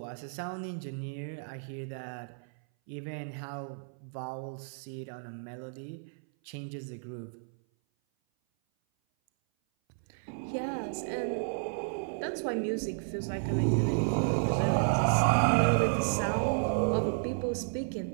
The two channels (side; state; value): left; silent; 56 dB below the other